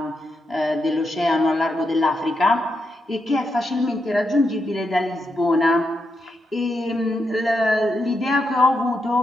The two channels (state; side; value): normal; both; correlation 0.83